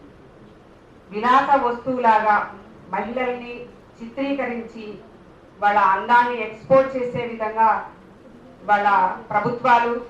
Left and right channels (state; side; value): identical; both; correlation 1.00